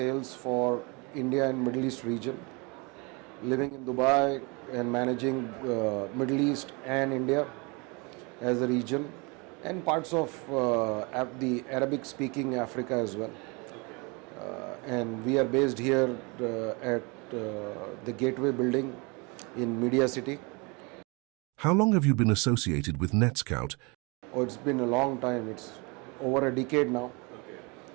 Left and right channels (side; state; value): left; quieter; 29.5 dB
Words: for India and Middle East region, living in Dubai and managing Middle East and India as a region and parts of the Arabic-speaking Africa as well. And we are based here at the Gateway building in Media City. How long have you been associated with NETSCOUT? Oh, it's been a long time. It's over a decade now.